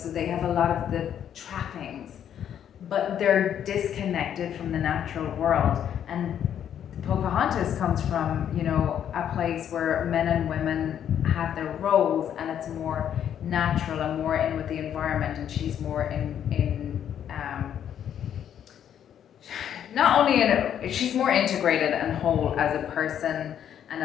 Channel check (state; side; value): quieter; right; 9.5 dB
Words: they have a lot of the trappings, but they're disconnected from the natural world. And Pocahontas comes from, you know, a place where men and women have their roles, and it's more natural and more in with the environment, and she's more in not only she's more integrated and whole as a person and